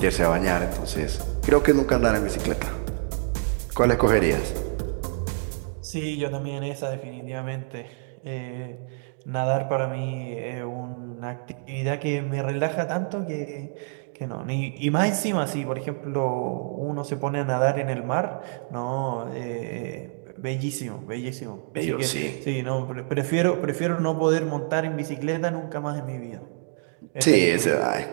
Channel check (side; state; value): left; silent; digital silence